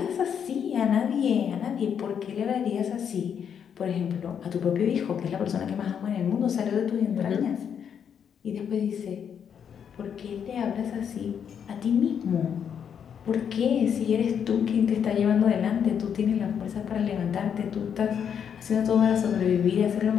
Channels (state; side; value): quieter; right; 7.9 dB